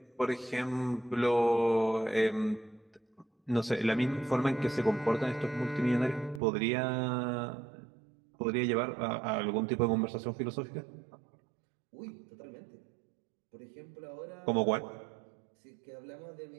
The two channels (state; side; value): drops out; left; at 6.4 s